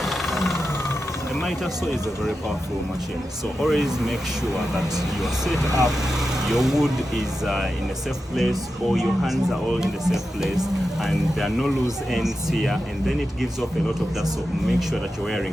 The miter saw is a very powerful machine, so always make sure that your setup, your wood is in a safe place, or your hands are all in the safe place, and there are no loose ends here, and then it gives off a lot of dust. So make sure that you're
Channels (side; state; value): both; normal; correlation 0.90